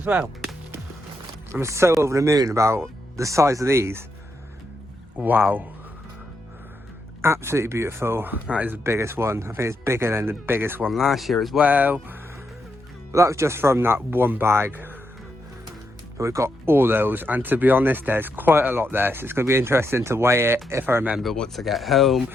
well. I'm so over the moon about the size of these. Wow. Absolutely beautiful. That is the biggest one. I think it's bigger than the biggest one last year as well. But that was just from that one bag. But we've got all those, and to be honest, there's quite a lot there, so it's going to be interesting to weigh it if I remember once I get home.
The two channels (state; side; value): normal; both; correlation 0.81